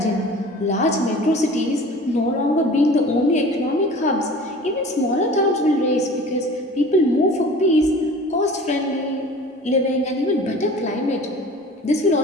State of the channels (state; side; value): normal; both; correlation 0.42